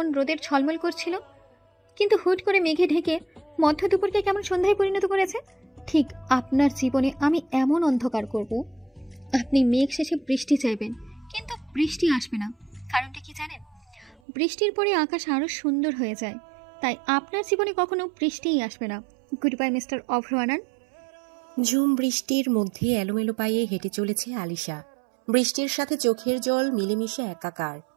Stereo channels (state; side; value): drops out; left; at 14.2 s